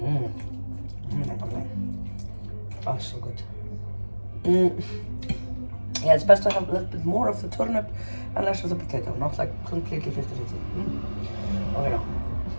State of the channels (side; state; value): both; inverted; correlation -1.00